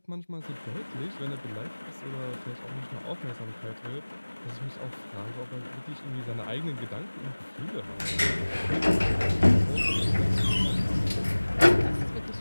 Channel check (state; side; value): inverted; both; correlation -1.00